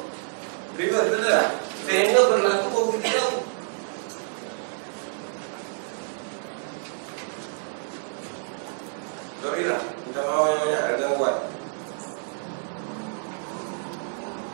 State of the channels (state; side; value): silent; left; digital silence